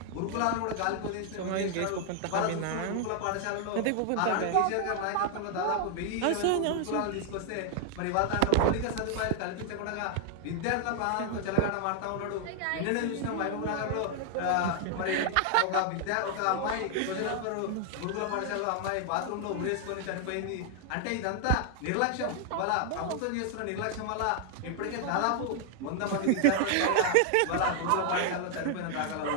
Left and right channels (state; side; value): different; both; correlation 0.00